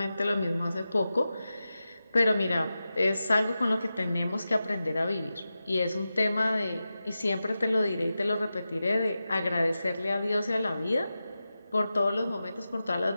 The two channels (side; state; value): both; inverted; correlation -0.92